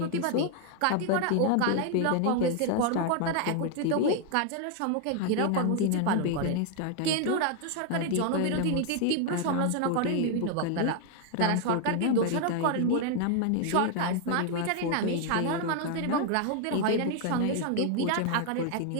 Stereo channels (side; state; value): both; different; correlation 0.00